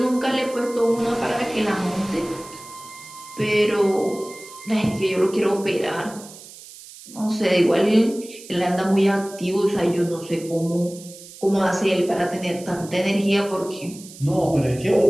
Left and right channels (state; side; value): noise; right; hiss, 17 dB below the sound